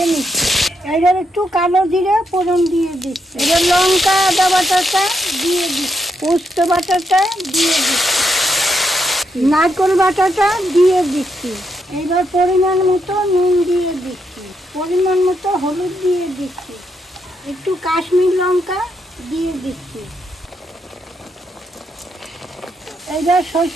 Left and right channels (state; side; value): normal; both; correlation 0.79